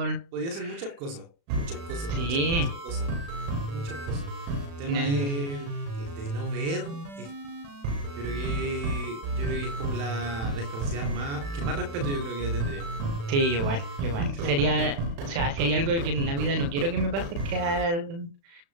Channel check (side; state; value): left; late; 36 ms